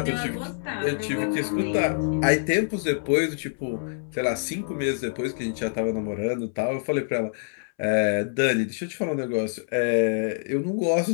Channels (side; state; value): right; silent; 61 dB below the other